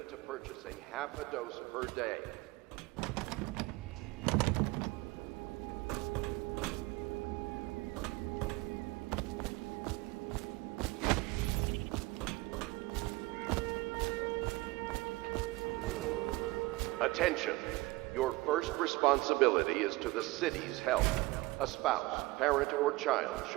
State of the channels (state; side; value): quieter; left; 21.3 dB